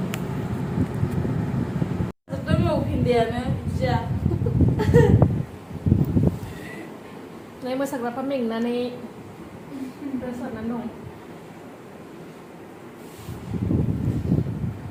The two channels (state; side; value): identical; both; correlation 1.00